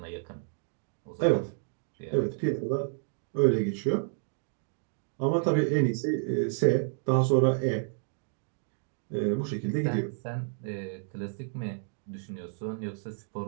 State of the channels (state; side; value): silent; left; digital silence